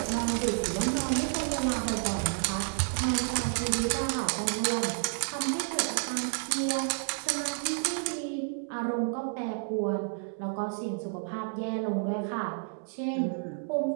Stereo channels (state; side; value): silent; left; digital silence